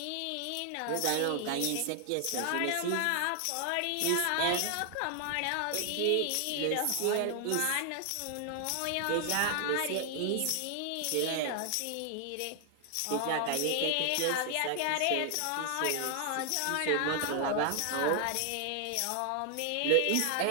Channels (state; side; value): different; both; correlation 0.00